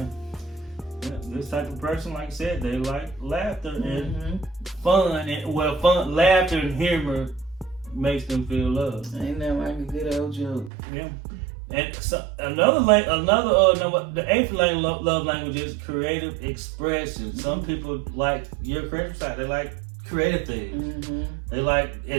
This type of person, like I said, they like laughter and fun. Fun, laughter and humor makes them feel loved. Ain't that like a good old joke? Yeah. And so the eighth love language is creative expression. Some people like your creative side. They like creative things. They like,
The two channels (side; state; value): left; drops out; at 10.7 s